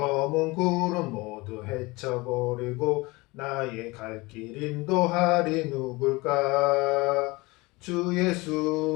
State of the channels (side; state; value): right; quieter; 23.2 dB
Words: 구름 모두 헤쳐버리고 나의 갈 길 인도하리 누굴까. 주